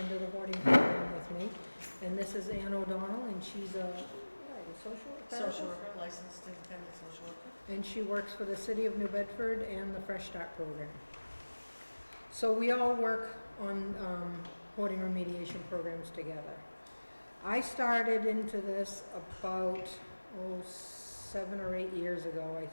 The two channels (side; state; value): both; inverted; correlation -1.00